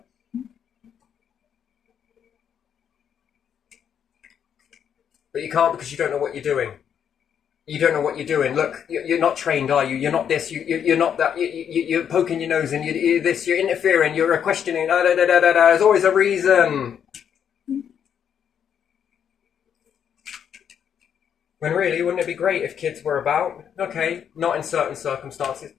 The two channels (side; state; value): right; quieter; 8.4 dB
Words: But you can't because you don't know what you're doing. You don't know what you're doing. Look, you're not trained, are you? You're not this. You're not that. You're poking your nose in. You're this. You're interfering. You're questioning. There's always a reason. When really, wouldn't it be great if kids were about? Okay, not in certain circumstances.